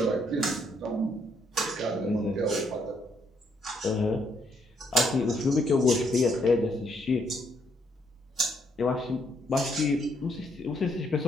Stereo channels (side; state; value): both; normal; correlation 0.72